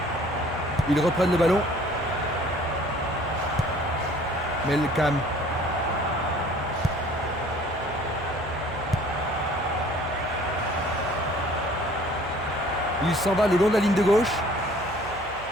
Ils reprennent le ballon. Melkam. Il s'en va le long de la ligne de gauche.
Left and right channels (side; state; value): right; noise; hum, 18 dB below the sound